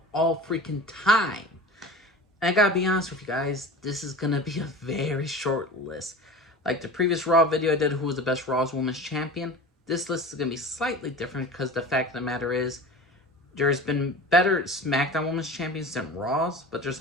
all freaking time. And I gotta be honest with you guys, this is gonna be a very short list. Like the previous Raw video I did, who was the best Raw's Women's Champion, this list is gonna be slightly different because the fact of the matter is, there's been better SmackDown Women's Champions than Raw's, but there's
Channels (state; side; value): normal; both; correlation 0.35